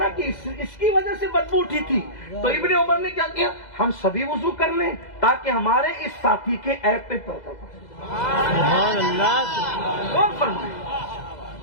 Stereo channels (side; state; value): right; late; 2.0 ms